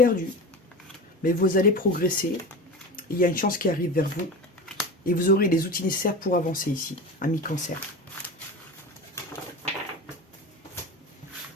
mais vous allez progresser. Il y a une chance qui arrive vers vous et vous aurez les outils nécessaires pour avancer ici, à mi-cancer.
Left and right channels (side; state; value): both; normal; correlation 0.29